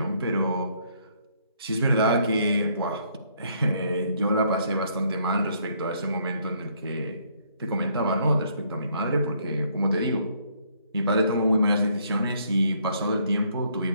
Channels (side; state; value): both; inverted; correlation -0.68